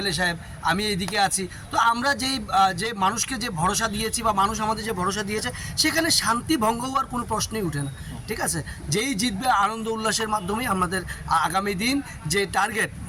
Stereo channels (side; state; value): both; identical; correlation 1.00